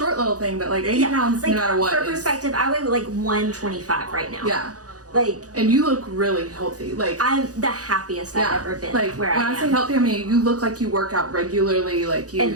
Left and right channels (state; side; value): late; left; 0.67 ms